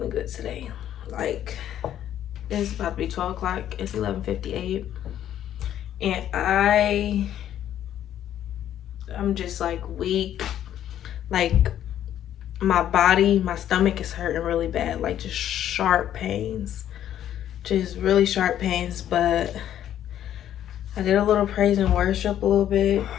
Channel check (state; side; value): quieter; right; 11.1 dB